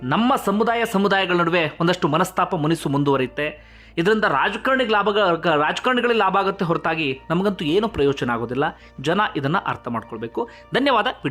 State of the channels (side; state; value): both; identical; correlation 1.00